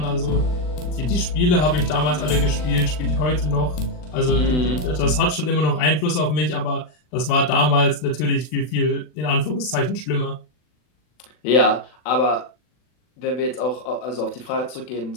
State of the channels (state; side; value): late; right; 40 ms